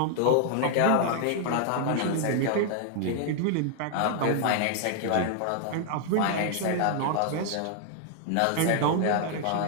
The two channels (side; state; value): both; different; correlation 0.00